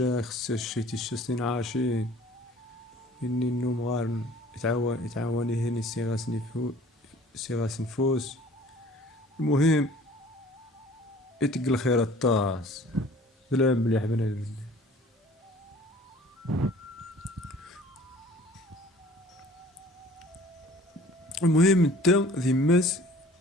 خص الشيتي الشسنين عاشين اني النوم غار يتعاوني هني سيغاس نفوس. المهم يتق الخير الطاس بلا مليح بنادم. المهم انت ذماس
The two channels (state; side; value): normal; both; correlation 0.50